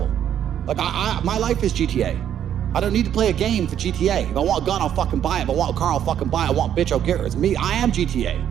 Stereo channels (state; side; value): quieter; left; 10.0 dB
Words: Like, my life is GTA. I don't need to play a game for GTA. If I want a gun, I'll fucking buy it. If I want a car, I'll fucking buy it. I want a bitch, I'll get her. It's me. I am GTA.